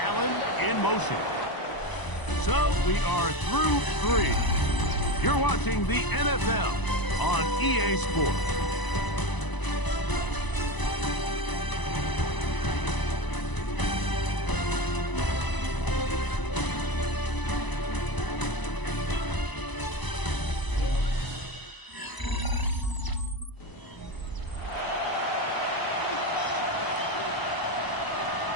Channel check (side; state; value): right; late; 1.0 ms